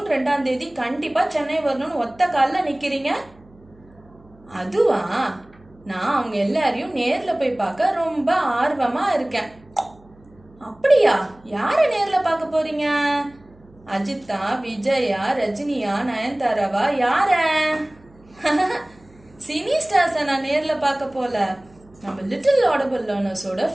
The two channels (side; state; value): right; noise; hum, 27 dB below the sound